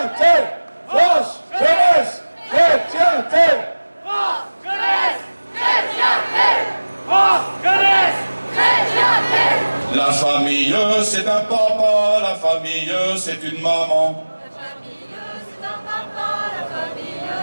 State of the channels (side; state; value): both; inverted; correlation -1.00